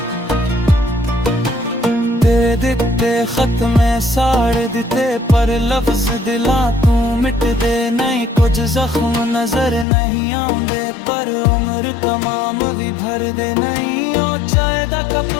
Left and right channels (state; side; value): drops out; right; at 9.9 s